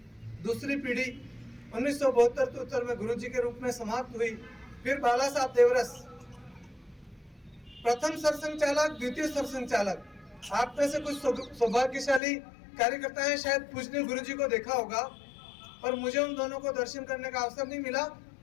दूसरी पीढ़ी 1972 में गुरुजी के रूप में समाप्त हुई। फिर बाला साहब देवरस, प्रथम सरसंघ चालक, द्वितीय सरसंघ चालक। आप में से कुछ सौभाग्यशाली कार्यकर्ता हैं, शायद पूजनीय गुरुजी को देखा होगा, पर मुझे उन दोनों को दर्शन करने का अवसर नहीं मिला।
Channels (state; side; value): drops out; right; at 12.2 s